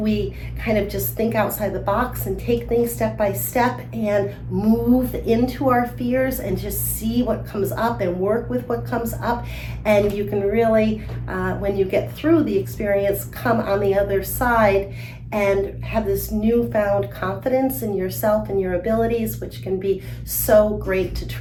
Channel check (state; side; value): identical; both; correlation 1.00